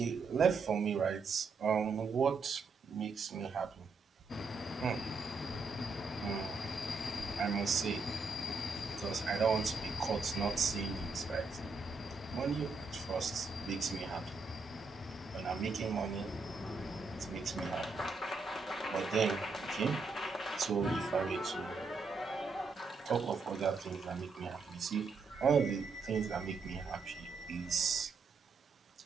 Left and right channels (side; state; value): left; quieter; 4.1 dB